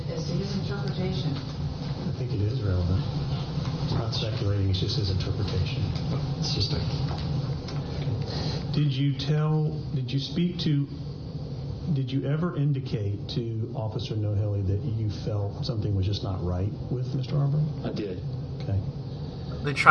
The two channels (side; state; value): both; identical; correlation 1.00